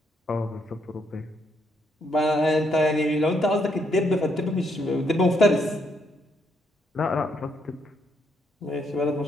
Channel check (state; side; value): normal; both; correlation 0.75